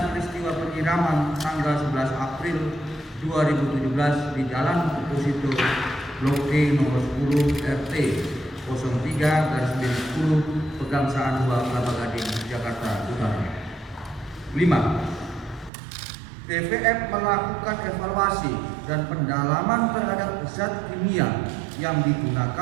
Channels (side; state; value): left; drops out; at 15.7 s